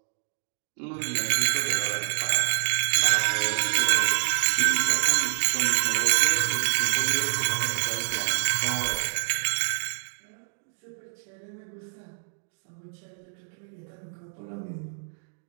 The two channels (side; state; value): left; silent; digital silence